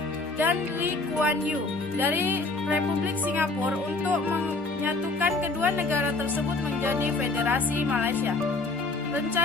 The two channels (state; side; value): quieter; right; 3.4 dB